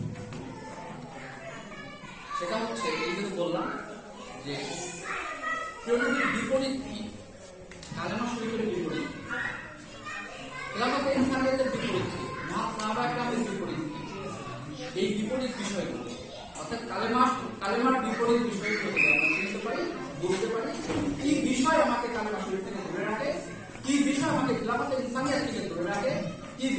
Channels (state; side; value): identical; both; correlation 1.00